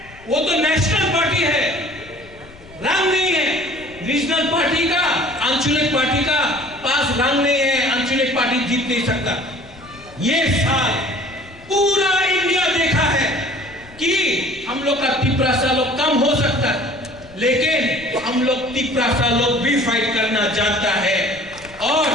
वो तो नेशनल पार्टी है, रंग नहीं है। रीजनल पार्टी का, आंचलिक पार्टी का पास रंग नहीं है, आंचलिक पार्टी जीत नहीं सकता। ये साल पूरा इंडिया देखा है कि हम लोग का तिप्रासा लोग कम हो सकता है, लेकिन हम लोग तिप्रासा लोग भी फाइट करना जानता है। और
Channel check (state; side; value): noise; left; rumble, 22 dB below the sound